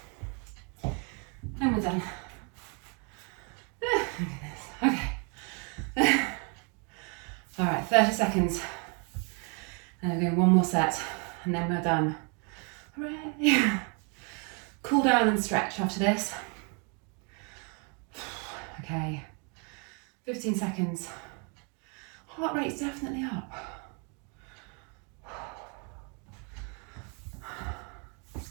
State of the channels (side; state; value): left; quieter; 35.7 dB